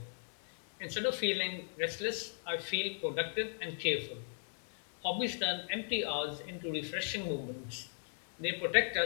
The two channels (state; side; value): silent; right; 53 dB below the other